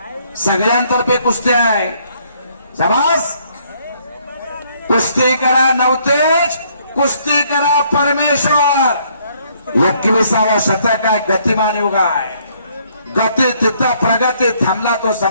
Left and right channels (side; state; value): both; inverted; correlation -0.67